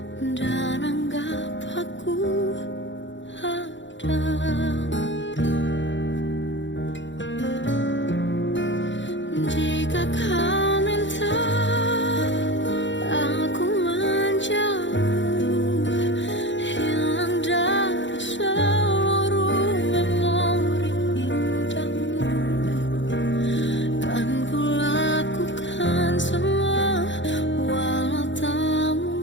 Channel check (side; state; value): right; late; 0.54 ms